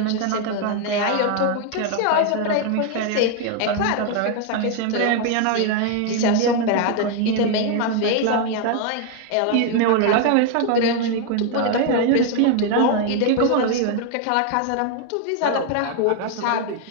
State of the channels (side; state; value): both; different; correlation 0.01